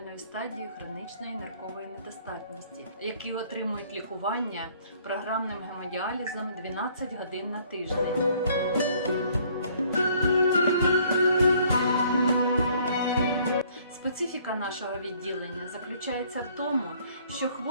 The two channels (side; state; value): both; inverted; correlation -0.60